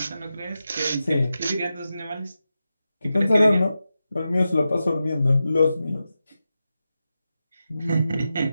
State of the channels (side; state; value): both; inverted; correlation -0.91